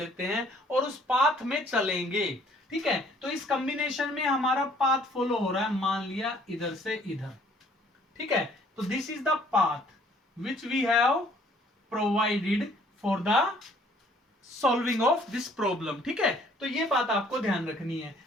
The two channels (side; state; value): both; normal; correlation 0.60